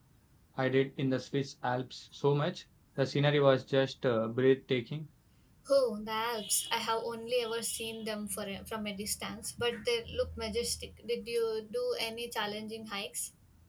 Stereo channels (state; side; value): identical; both; correlation 1.00